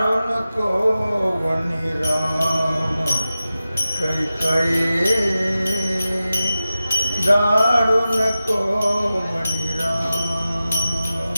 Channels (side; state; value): both; inverted; correlation -0.94